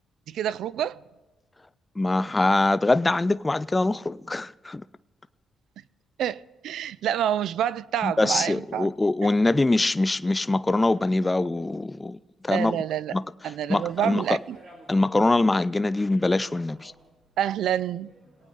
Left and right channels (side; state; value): both; normal; correlation 0.88